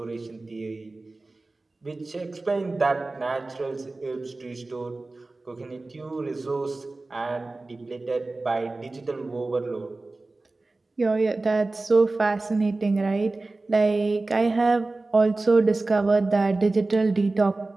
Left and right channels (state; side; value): quieter; left; 3.2 dB